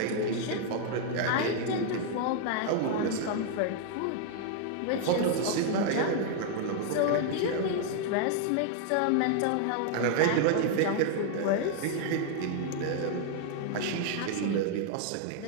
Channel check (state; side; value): different; both; correlation 0.00